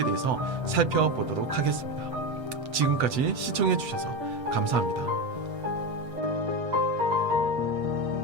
대해서 살펴보도록 하겠습니다. 지금까지 시청해 주셔서 감사합니다.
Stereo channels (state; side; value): late; left; 8.0 ms